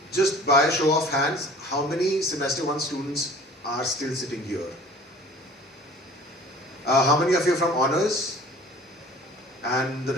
just by a show of hands, how many semester 1 students are still sitting here? How many of you are from honors and the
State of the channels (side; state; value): both; normal; correlation 0.47